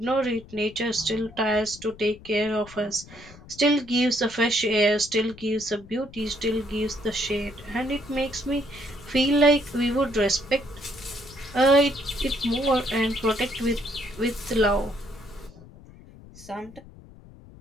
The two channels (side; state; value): left; noise; rumble, 20 dB below the sound